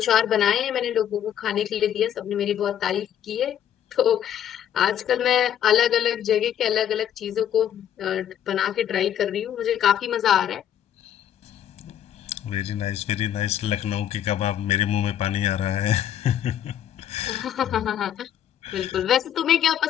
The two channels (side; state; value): right; quieter; 10.3 dB